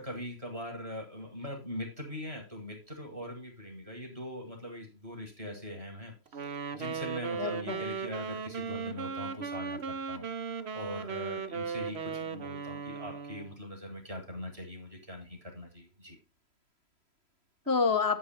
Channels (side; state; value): left; late; 3.0 ms